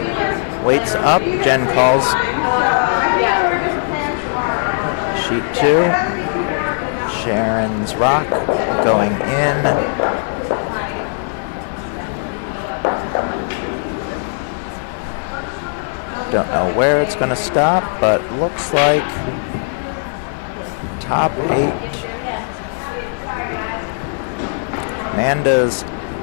Weights up, Jen calls sheet 2. Sharon's rock going in. Don't know where it's going to stop, but looks like top 8. Amanda's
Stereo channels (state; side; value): silent; right; 67 dB below the other